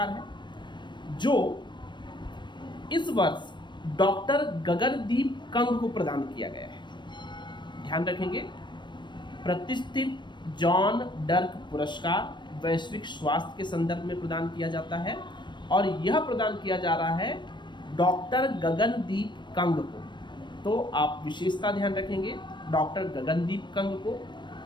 है, जो इस वर्ष डॉक्टर गगनदीप कंग को प्रदान किया गया है। ध्यान रखेंगे, प्रतिष्ठित जॉन डर्क पुरस्कार वैश्विक स्वास्थ्य के संदर्भ में प्रदान किया जाता है और यह प्रदान किया जा रहा है डॉक्टर गगनदीप कंग को। तो आप विशेषता ध्यान रखेंगे डॉक्टर गगनदीप कंग को।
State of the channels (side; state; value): right; late; 0.22 ms